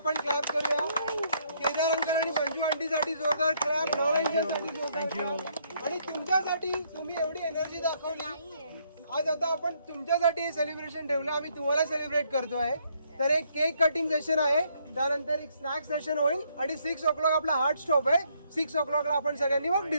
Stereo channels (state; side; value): inverted; both; correlation -0.70